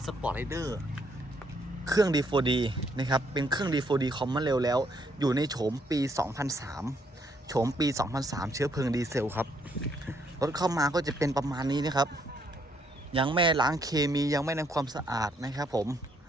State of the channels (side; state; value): both; normal; correlation 0.71